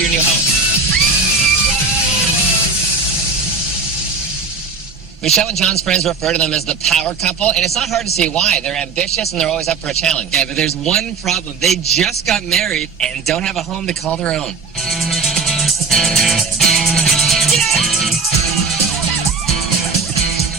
your new home. Michelle and John's friends refer to them as the power couple, and it's not hard to see why. They're ambitious and they're always up for a challenge. Yeah, but there's one problem. They just got married and don't have a home to call their own.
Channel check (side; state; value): left; quieter; 4.6 dB